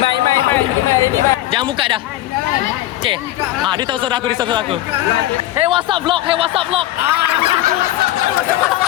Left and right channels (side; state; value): right; quieter; 15.0 dB